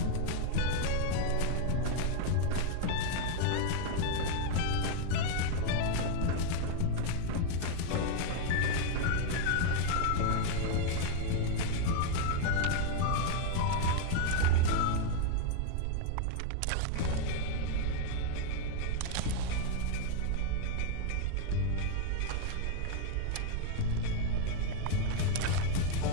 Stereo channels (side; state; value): both; different; correlation 0.00